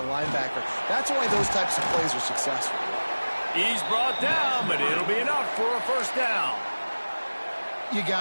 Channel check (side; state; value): both; inverted; correlation -1.00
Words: linebacker. That's why those types of plays are successful. He's brought down, but it'll be enough for a 1st down. You